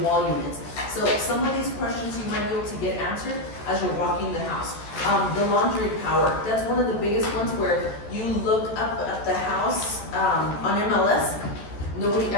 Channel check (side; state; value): right; late; 14 ms